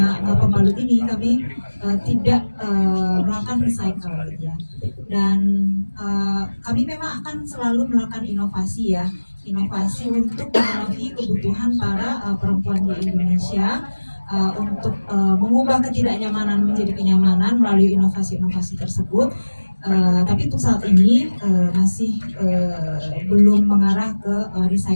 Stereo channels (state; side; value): inverted; both; correlation -1.00